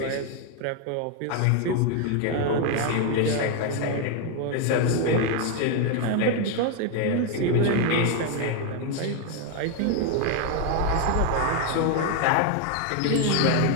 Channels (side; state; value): both; different; correlation 0.01